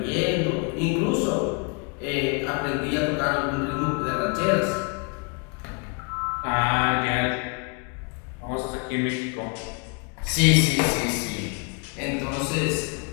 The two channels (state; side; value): quieter; right; 34.9 dB